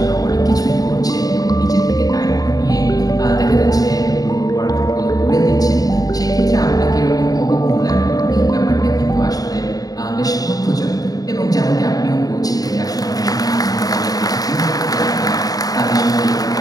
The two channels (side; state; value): right; late; 0.18 ms